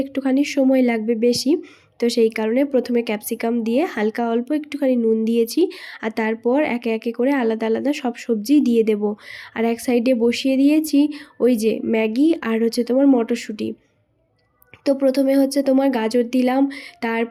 একটুখানি সময় লাগবে বেশি, তো সেই কারণে প্রথমে ক্যাপসিকাম দিয়ে হালকা অল্প একটুখানি নুন দিয়েছি। আর তারপর একে একে করে আলাদা আলাদা সব সবজি দিয়ে দেব। আর এক সাইডে বসিয়ে দিয়েছি ওই যে ম্যাগি আর হচ্ছে তোমার মটরশুঁটি। তো প্রথমে হচ্ছে তোমার গাজর দিলাম,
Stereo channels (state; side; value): identical; both; correlation 1.00